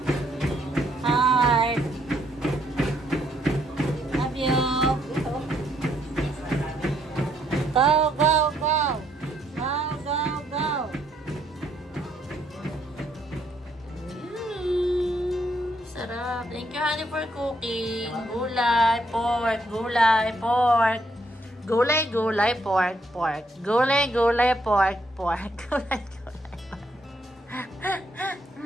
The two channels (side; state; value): both; normal; correlation 0.72